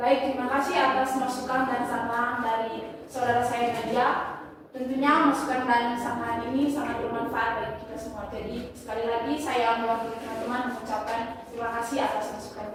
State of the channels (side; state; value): both; identical; correlation 1.00